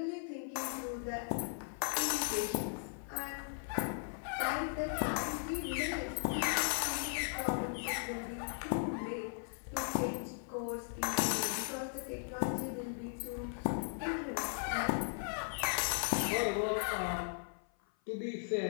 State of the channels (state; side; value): silent; right; 53 dB below the other